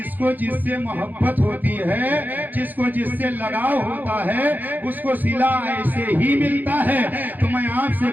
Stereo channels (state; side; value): late; left; 0.084 ms